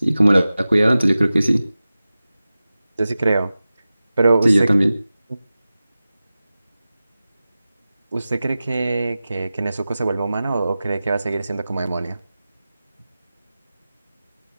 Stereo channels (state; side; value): inverted; both; correlation -0.96